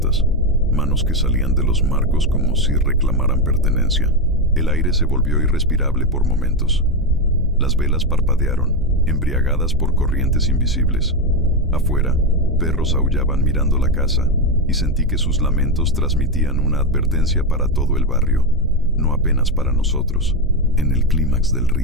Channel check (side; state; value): both; normal; correlation 0.09